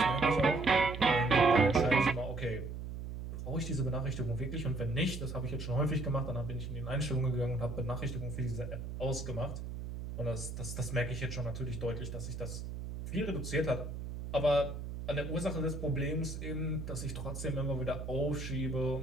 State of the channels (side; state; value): right; noise; hum, 7 dB below the sound